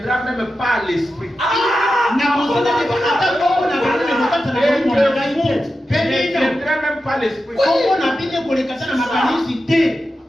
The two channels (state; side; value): normal; both; correlation 0.91